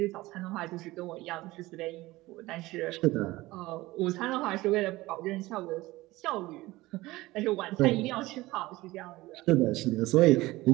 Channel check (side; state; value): left; quieter; 19.1 dB